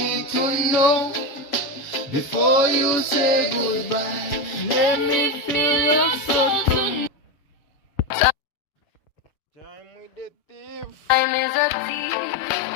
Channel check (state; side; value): late; right; 7.5 ms